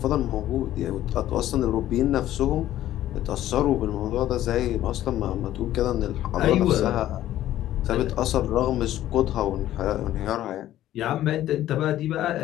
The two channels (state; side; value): quieter; right; 13.3 dB